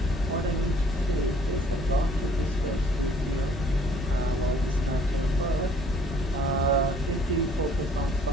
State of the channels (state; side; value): normal; both; correlation 0.58